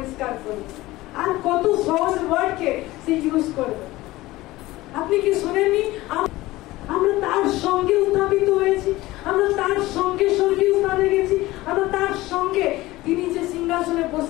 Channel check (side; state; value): right; quieter; 18.4 dB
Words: করে, আর কত সহজ ওয়ার্ডকে সে ইউজ করবে। আপনি কি শুনেননি? আমরা তার সঙ্গে উত্থাপিত হয়েছি, আমরা তার সঙ্গে স্বর্গীয় স্থানে গেছি, আমরা তার সঙ্গে তিনি যে সিংহাসনে